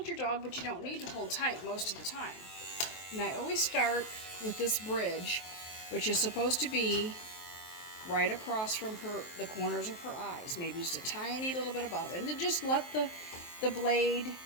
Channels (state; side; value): late; right; 23 ms